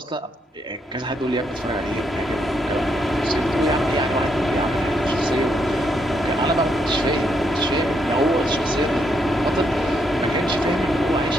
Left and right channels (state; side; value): normal; both; correlation 0.77